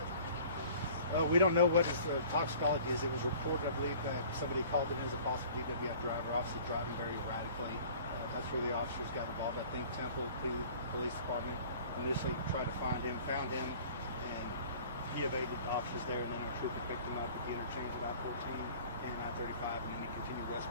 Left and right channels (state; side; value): inverted; both; correlation -0.48